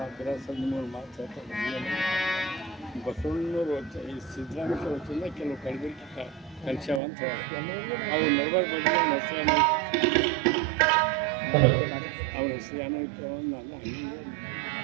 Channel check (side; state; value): left; drops out; at 7.0 s